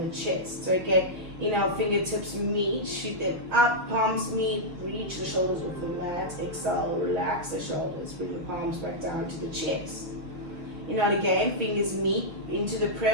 chest. So again, inhale, fingertips meet, shoot them up, palms meet, reach the shoulders off the mat, exhale, relax the shoulders, bring the palms back down to the chest. Inhale again, fingers meet into the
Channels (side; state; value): left; late; 5.9 ms